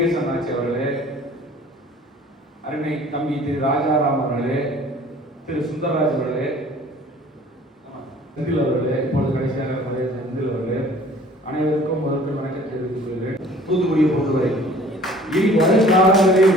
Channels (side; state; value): both; normal; correlation 0.51